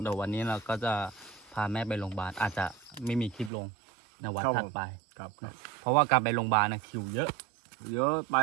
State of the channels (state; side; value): drops out; left; at 3.5 s